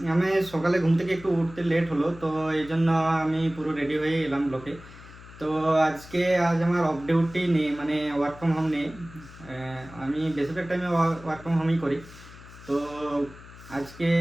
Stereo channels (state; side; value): noise; left; hum, 18 dB below the sound